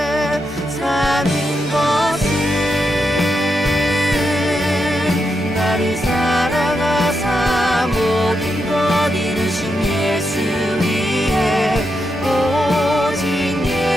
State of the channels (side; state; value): both; normal; correlation 0.84